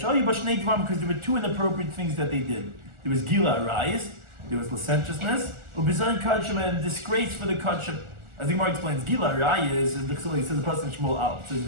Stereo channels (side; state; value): left; late; 1.4 ms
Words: you Bashnei Dvarim because there were 2 inappropriate things that they did. There was Gila Arayis, there was licentiousness, Ubizan Kachim, and disgrace for the Kachim. As the Gemara explains, Gila Arayis is the Chilei, says the person in Shmuel Al. It says